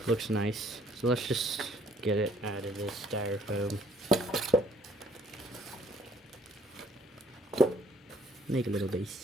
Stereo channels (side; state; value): both; normal; correlation 0.62